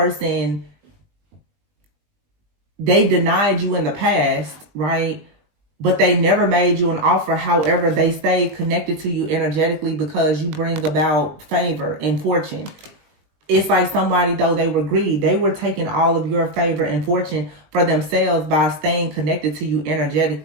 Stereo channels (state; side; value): late; left; 20 ms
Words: they denied you in the past, right? But they never made you an offer. However, they stayed connected to you energetically because you bring about favor and fortune. It's like somebody, though, they were greedy. They were taking all of your favor and fortune for themselves by staying connected to you